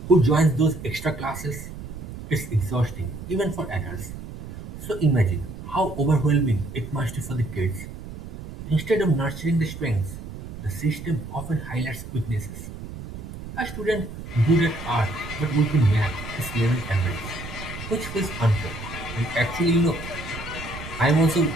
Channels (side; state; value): right; noise; rumble, 11 dB below the sound